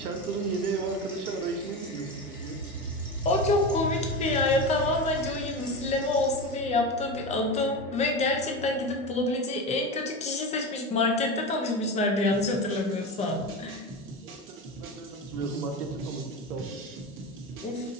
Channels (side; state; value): both; normal; correlation 0.23